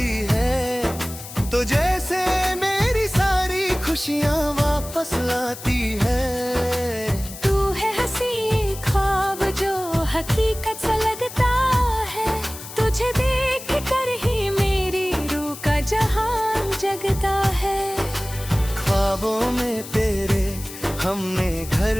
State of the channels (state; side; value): noise; left; hiss, 13 dB below the sound